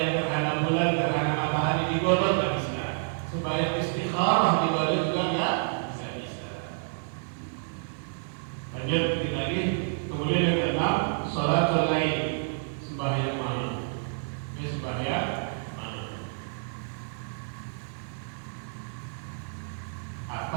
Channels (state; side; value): silent; left; digital silence